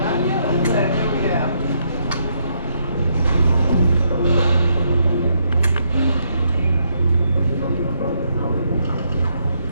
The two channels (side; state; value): both; inverted; correlation -0.75